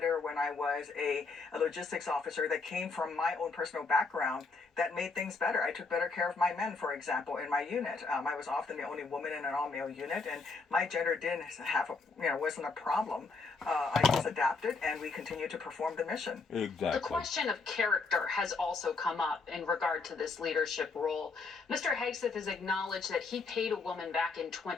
when I was a logistics officer, that came from my own personal background that made things better. I took better care of my men, for example, in my unit. I was often the only woman in an all-male unit, and my gender didn't have wasn't a problem. I just adapted, and we continued to perform the mission. Exactly. The question of character has also come up in regard to this leadership role. Mr. Hegseth has acknowledged that he paid a woman back in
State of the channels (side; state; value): right; quieter; 4.2 dB